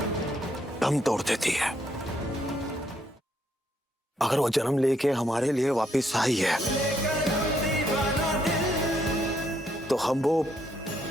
दम तोड़ देती है। अगर वो जन्म लेके हमारे लिए वापस आई है तो हम वो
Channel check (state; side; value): normal; both; correlation 0.74